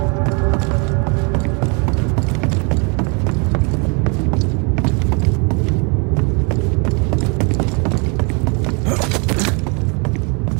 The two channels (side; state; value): left; quieter; 33.7 dB